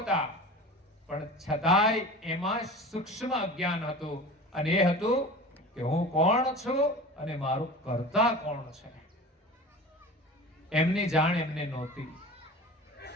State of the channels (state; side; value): normal; both; correlation 0.36